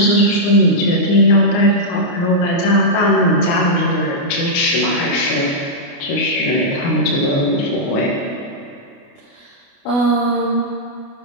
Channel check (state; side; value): late; right; 29 ms